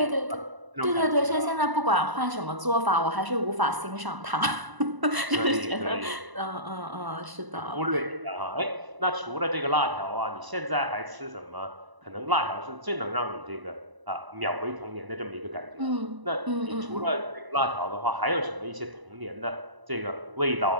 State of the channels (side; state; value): left; late; 1.0 ms